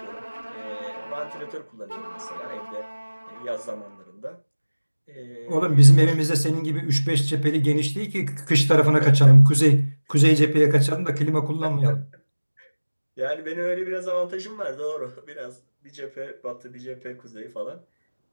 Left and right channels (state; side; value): inverted; both; correlation -1.00